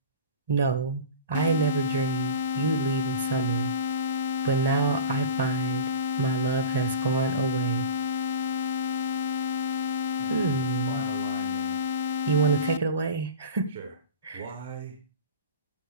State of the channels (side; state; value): both; inverted; correlation -0.33